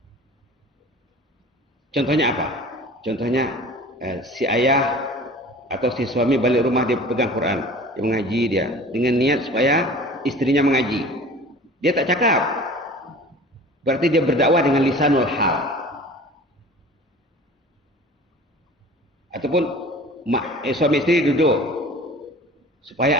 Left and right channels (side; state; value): both; normal; correlation 0.42